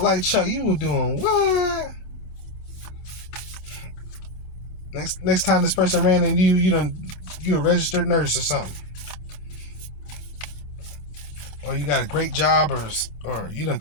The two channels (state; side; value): late; right; 28 ms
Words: Chuck. You were doing what? Next time this person ran into you a registered nurse or something. Or you got a great job, or you done